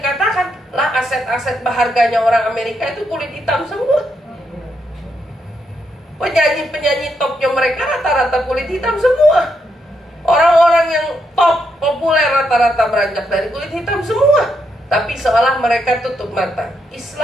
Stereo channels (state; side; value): normal; both; correlation 0.80